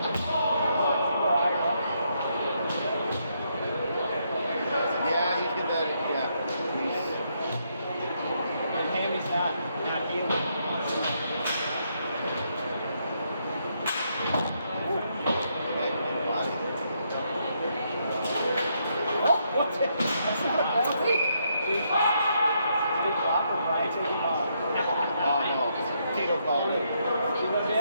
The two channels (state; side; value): inverted; both; correlation -0.76